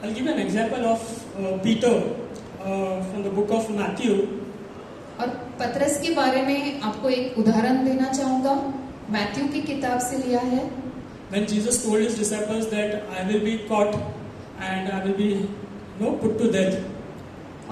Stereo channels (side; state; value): both; identical; correlation 1.00